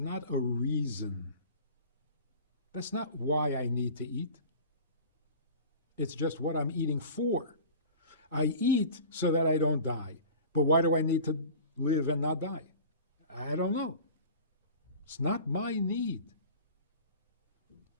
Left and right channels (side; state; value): both; inverted; correlation -0.39